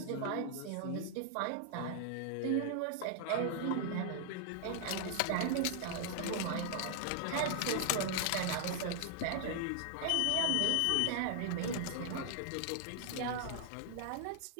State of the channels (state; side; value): different; both; correlation 0.00